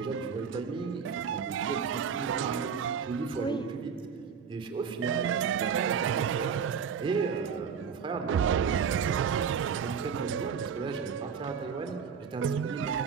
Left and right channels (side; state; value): left; quieter; 6.7 dB